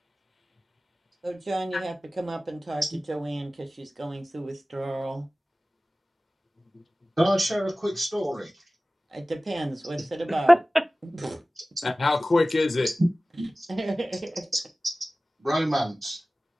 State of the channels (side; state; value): both; normal; correlation 0.97